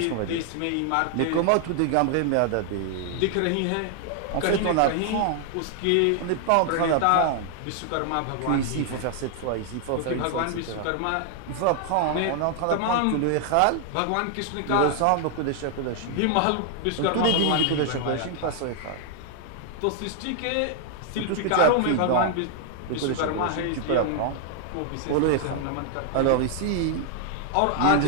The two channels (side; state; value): both; different; correlation 0.00